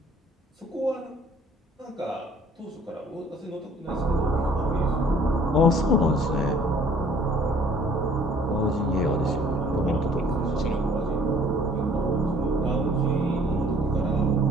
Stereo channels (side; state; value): both; normal; correlation 0.56